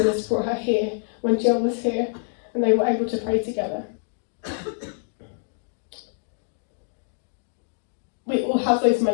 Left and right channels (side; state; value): right; silent; digital silence